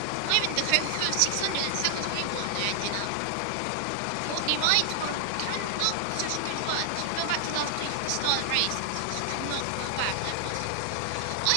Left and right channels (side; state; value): both; different; correlation 0.00